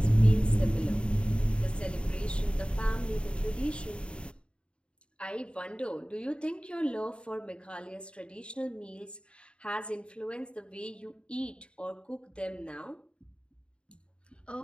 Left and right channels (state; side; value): late; right; 0.055 ms